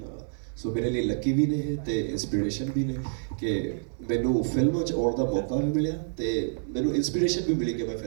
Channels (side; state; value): left; silent; digital silence